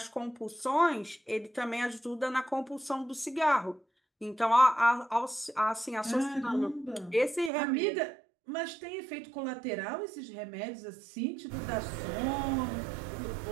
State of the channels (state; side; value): drops out; left; at 7.5 s